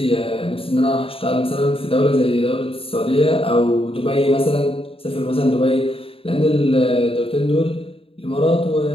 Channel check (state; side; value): late; right; 0.27 ms